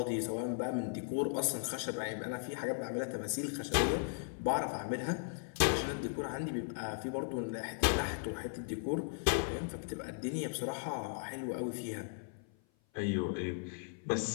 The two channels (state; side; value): silent; right; 53 dB below the other